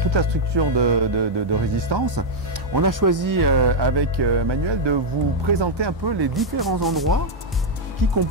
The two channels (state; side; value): normal; both; correlation -0.02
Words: la structure de Résistance. On a choisi avec Manuel de vous présenter un peu les différents endroits qui